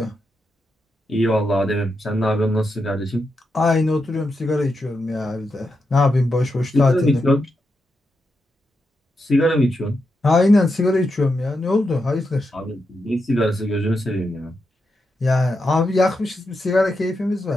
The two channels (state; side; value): normal; both; correlation 0.85